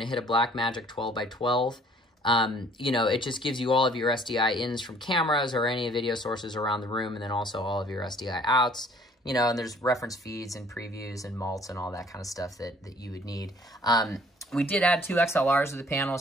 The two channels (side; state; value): both; normal; correlation 0.56